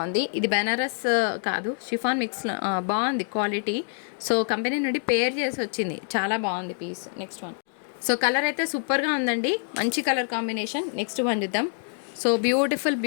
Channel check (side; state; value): right; silent; 61 dB below the other